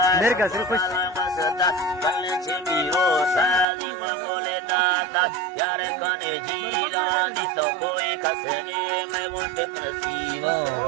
मेरे का सिर्फ कुछ बसता कल्ले छिपीरो सा लीमा बोले दाता यार कने जीरा दी तो कोई कसने में वो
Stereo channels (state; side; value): drops out; left; at 3.7 s